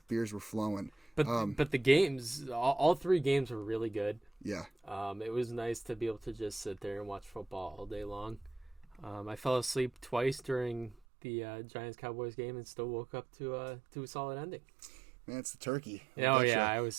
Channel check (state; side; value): drops out; left; at 11.0 s